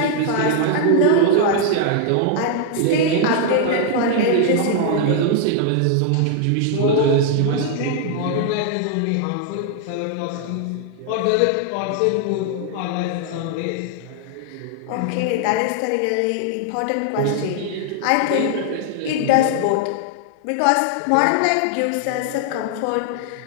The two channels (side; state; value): both; different; correlation 0.00